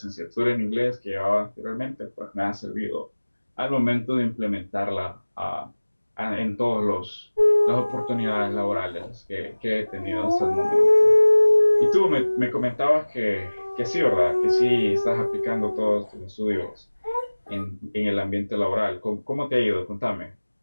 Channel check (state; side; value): inverted; both; correlation -1.00